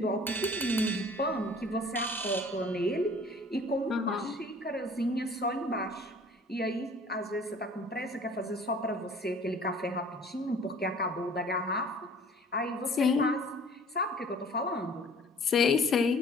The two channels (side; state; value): both; normal; correlation 0.50